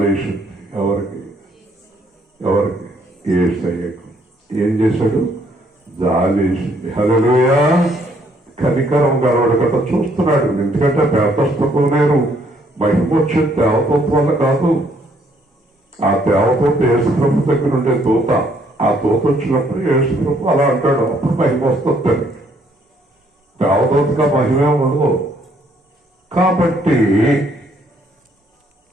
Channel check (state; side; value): normal; both; correlation 0.67